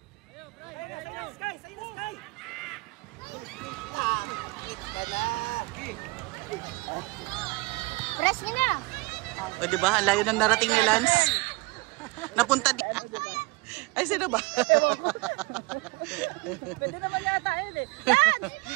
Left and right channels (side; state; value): left; quieter; 25.0 dB